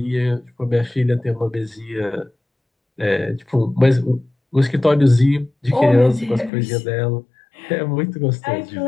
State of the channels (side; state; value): right; drops out; at 6.5 s